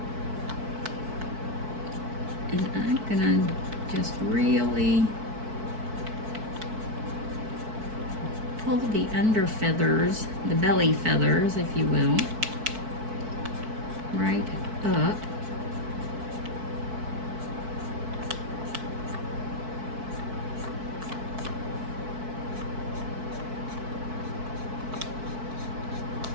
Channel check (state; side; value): late; left; 4.6 ms